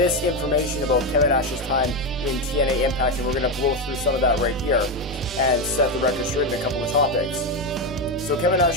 about Kevin Nash's time in TNA Impact, and we're going to blow through some of that right here and set the record straight in a couple of topics. So Kevin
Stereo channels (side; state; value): both; normal; correlation 0.11